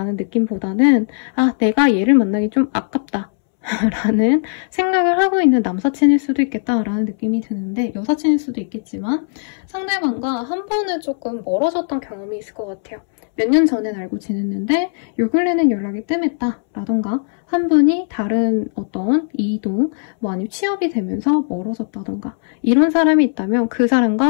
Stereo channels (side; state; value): right; silent; 67 dB below the other